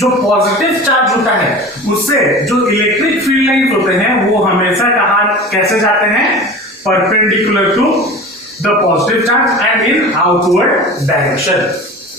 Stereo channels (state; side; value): normal; both; correlation 0.35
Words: पॉजिटिव चार्ज होता है उससे जो इलेक्ट्रिक फील्ड लाइंस होते हैं वो हमेशा कहां कैसे जाते हैं? Perpendicular to the positive charge and in outward direction.